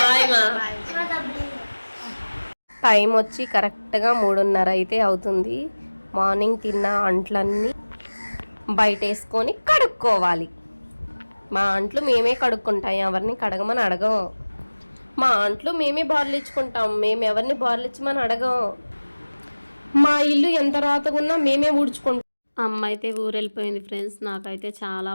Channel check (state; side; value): inverted; both; correlation -1.00